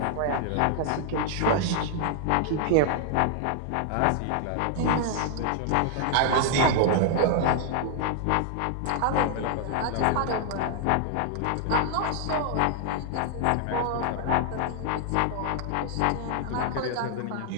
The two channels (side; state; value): both; different; correlation -0.01